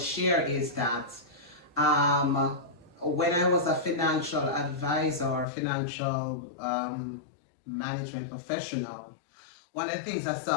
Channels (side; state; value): right; drops out; at 5.5 s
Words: share is that when I was a financial advisor or financial management professional, one of the things I